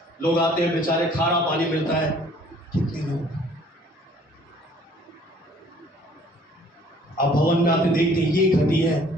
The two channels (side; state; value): both; normal; correlation 0.56